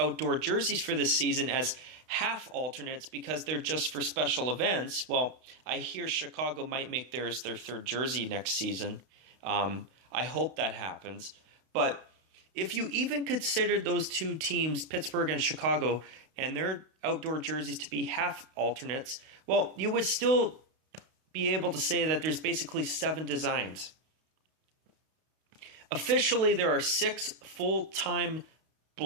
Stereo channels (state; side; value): late; left; 32 ms